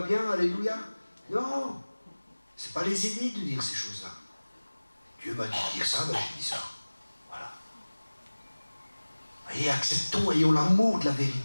bien, alléluia? Non, c'est pas les aider de dire ces choses-là. Dieu m'a dit de dire ça, ben j'ai dit ça. Voilà. Et acceptons, ayons l'amour de la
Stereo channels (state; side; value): inverted; both; correlation -1.00